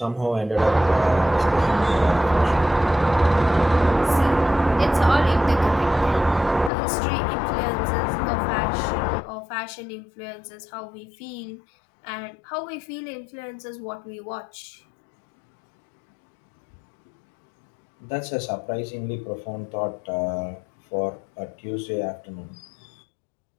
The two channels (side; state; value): right; drops out; at 6.7 s